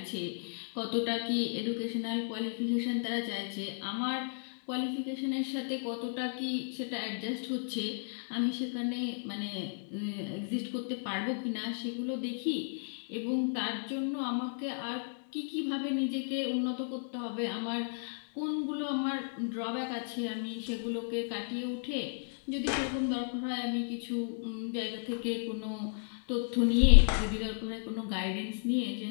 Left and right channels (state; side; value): silent; right; digital silence